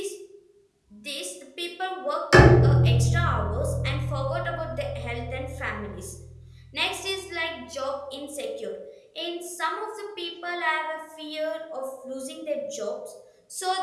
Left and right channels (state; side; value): identical; both; correlation 1.00